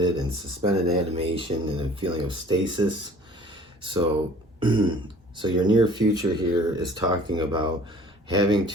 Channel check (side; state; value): both; normal; correlation 0.49